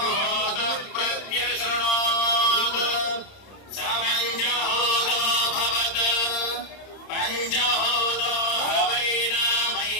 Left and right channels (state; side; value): late; right; 30 ms